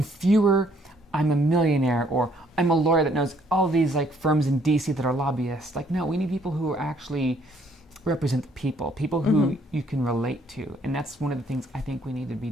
fewer, I'm a millionaire, or I'm a lawyer that knows all these like firms in DC that are lobbyists. Like, no, we need people who actually represent the people who you can relate to. And that's one of the things I think we need to be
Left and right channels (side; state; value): both; normal; correlation 0.65